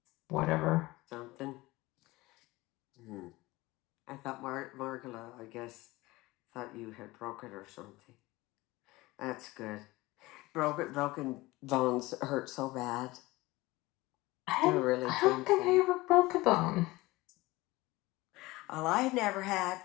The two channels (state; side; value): quieter; right; 20.3 dB